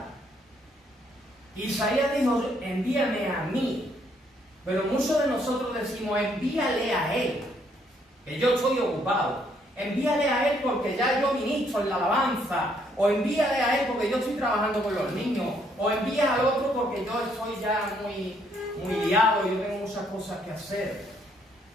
Isaías dijo, envíame a mí. Pero muchos de nosotros decimos, envíale a él, que yo estoy ocupado. Envíale a él porque ya yo ministro en la alabanza. O envíale a él porque yo estoy trabajando con los niños. O envía al otro porque yo estoy ya muy liado, yo tengo muchas cosas que hacer.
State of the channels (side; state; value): both; normal; correlation 0.69